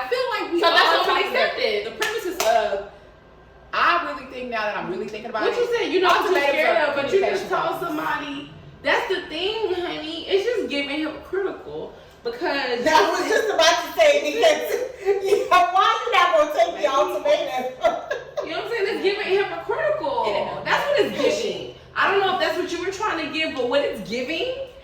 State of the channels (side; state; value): both; identical; correlation 1.00